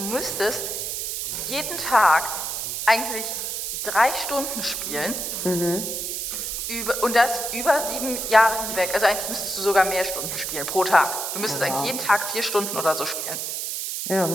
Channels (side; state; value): right; noise; hiss, 3 dB below the sound